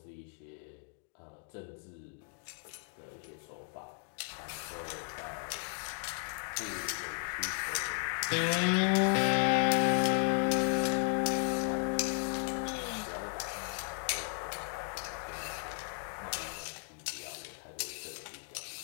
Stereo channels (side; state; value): right; silent; 54 dB below the other